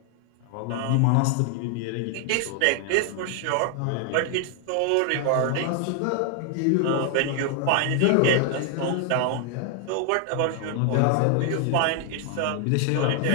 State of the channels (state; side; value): different; both; correlation 0.00